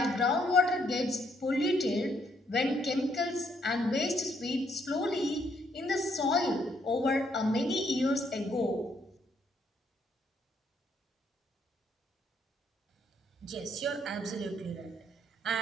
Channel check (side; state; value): both; normal; correlation 0.71